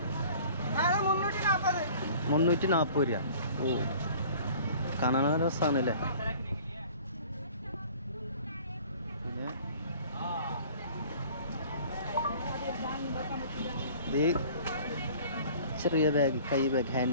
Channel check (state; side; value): inverted; both; correlation -0.48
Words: 340 രൂപ. ഓ കാണാൻ രസമാണല്ലേ. പിന്നെ ഇത് ചെറിയ ബാഗ്, കൈ ബാഗ്,